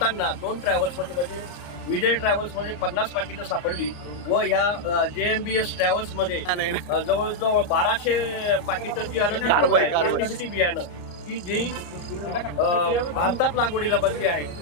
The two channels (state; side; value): late; right; 34 ms